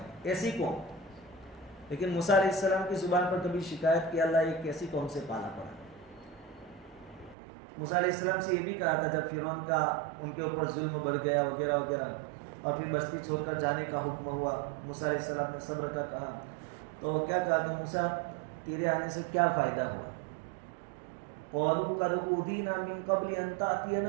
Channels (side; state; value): left; drops out; at 7.4 s